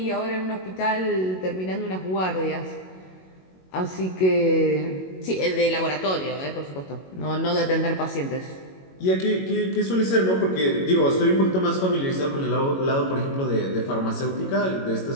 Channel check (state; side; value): late; right; 22 ms